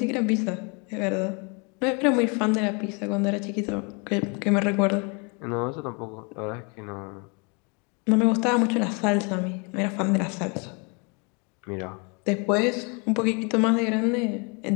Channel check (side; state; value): right; quieter; 32.9 dB